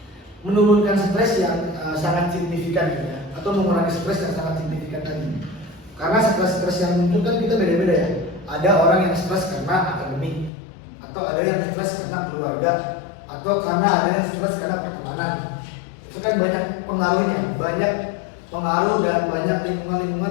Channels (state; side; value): drops out; right; at 10.5 s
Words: Menurunkan stres yang sangat signifikan gitu ya, atau mengurangi stres yang sangat signifikan tadi. Karena stres-stres yang muncul kan kita beda-beda ya. Ada orang yang stres karena akademik, atau ada yang stres karena keluarga, atau karena ada yang stres karena pertemanan. Itu kan banyak pengaruhnya, banyak pengaruh dan banyak